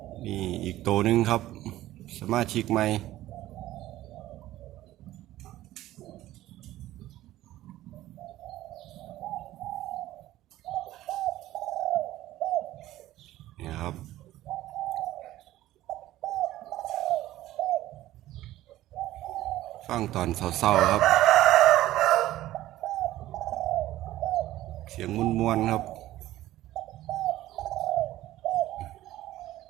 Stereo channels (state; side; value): quieter; left; 15.0 dB